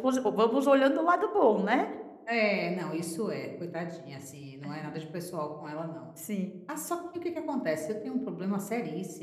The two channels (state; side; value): identical; both; correlation 1.00